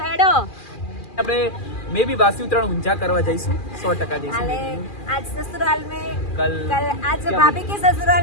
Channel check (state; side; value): late; right; 2.4 ms